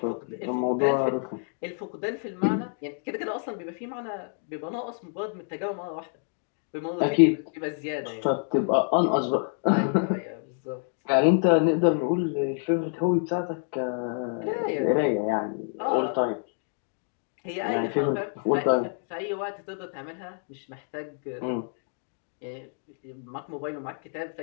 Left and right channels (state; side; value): silent; right; 56 dB below the other